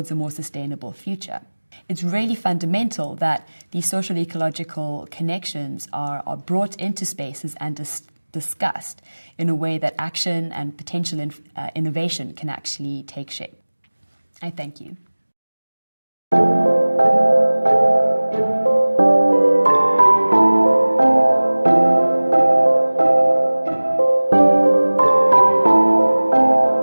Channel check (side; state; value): both; inverted; correlation -1.00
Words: a more sustainable future. It's really fundamental that these social ecological connections are brought into spaces and discussed in a way that action and potential innovation can actually take shape. I thank you.